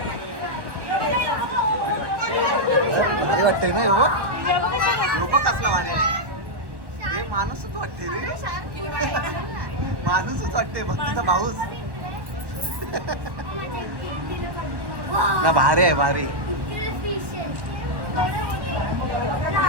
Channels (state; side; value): late; left; 1.1 ms